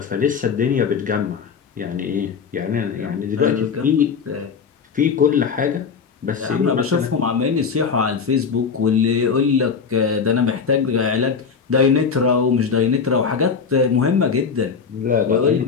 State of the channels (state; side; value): quieter; right; 5.9 dB